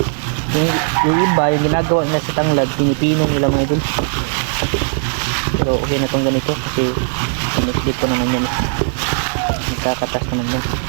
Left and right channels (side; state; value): left; silent; 63 dB below the other